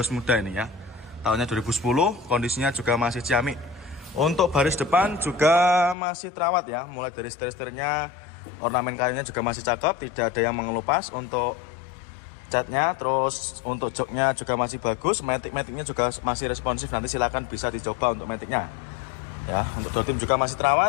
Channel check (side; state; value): right; drops out; at 6.0 s